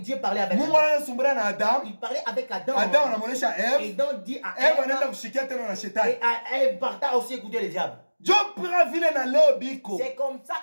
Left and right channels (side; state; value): both; inverted; correlation -1.00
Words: parlait avec Mungu anaanza kusumbura na Adam il parlait avec Adam Adam anamuonesha Eve et donc dit à Eve anaenda kushikia tena na shetani et à Eve parta aussi écouter le diable c'est comme ça